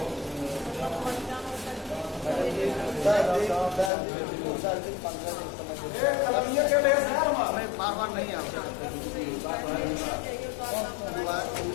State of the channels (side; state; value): right; drops out; at 3.9 s